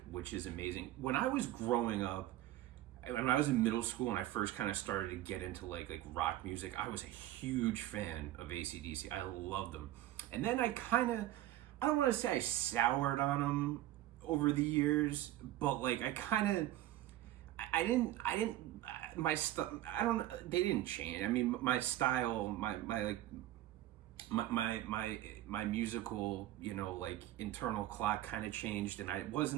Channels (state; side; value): quieter; left; 14.3 dB